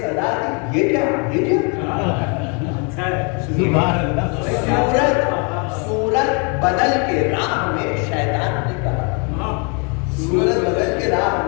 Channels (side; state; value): right; quieter; 35.2 dB